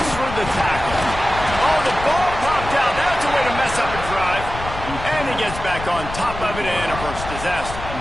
through the tackle. Oh, the ball popped out. That's a way to mess up a drive. And he gets back on top of it, and a first disaster.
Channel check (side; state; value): left; noise; rumble, 10 dB below the sound